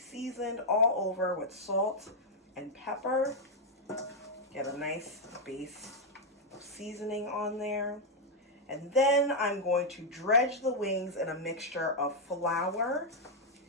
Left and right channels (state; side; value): normal; both; correlation -0.02